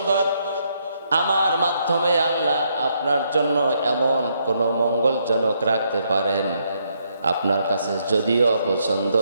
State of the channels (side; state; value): both; inverted; correlation -0.75